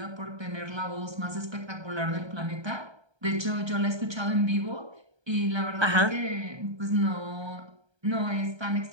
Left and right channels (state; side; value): late; left; 1.3 ms